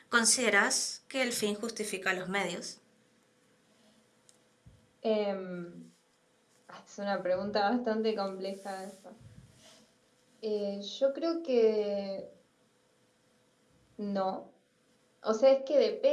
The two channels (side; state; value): both; identical; correlation 1.00